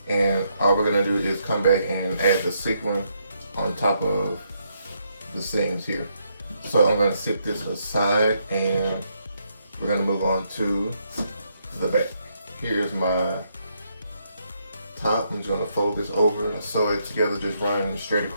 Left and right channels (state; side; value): inverted; both; correlation -0.76